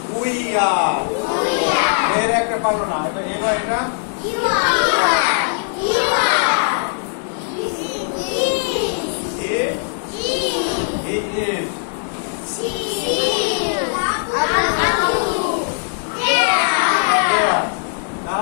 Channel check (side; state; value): right; silent; digital silence